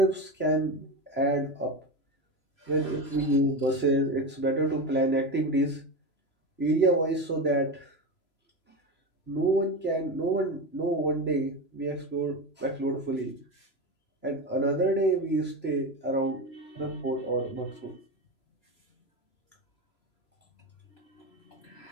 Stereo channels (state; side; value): late; right; 3.0 ms